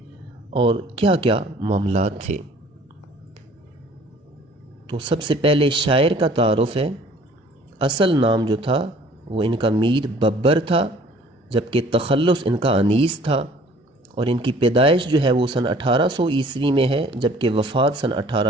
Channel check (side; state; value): both; normal; correlation 0.53